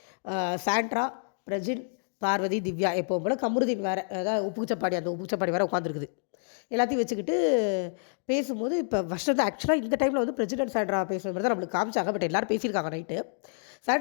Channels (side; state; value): right; silent; digital silence